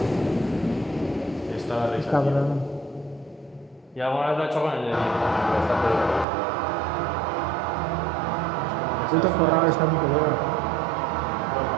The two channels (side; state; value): left; drops out; at 6.2 s